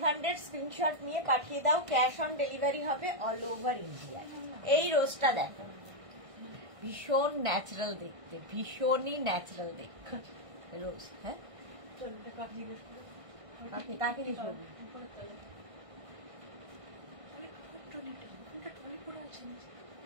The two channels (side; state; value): left; late; 1.5 ms